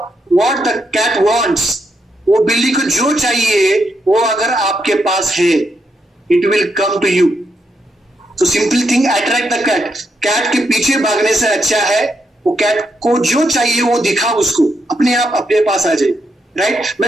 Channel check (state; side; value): normal; both; correlation 0.80